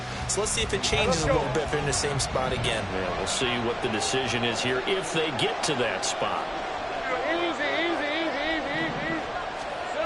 So let's see if it changes a little bit if they're in the same spot again. Yeah, we'll see what the decision is here if they get to that spot.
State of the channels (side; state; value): both; identical; correlation 1.00